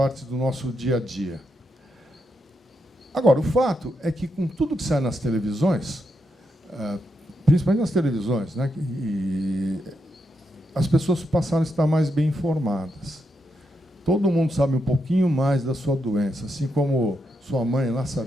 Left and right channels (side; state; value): both; normal; correlation 0.82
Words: do nosso dia a dia. Agora, o fato é que, com tudo que sai nas televisões, principalmente nas televisões, né, as pessoas passaram a estar mais bem informadas. Todo mundo sabe um pouquinho mais da sua doença, assim como sua mãe lá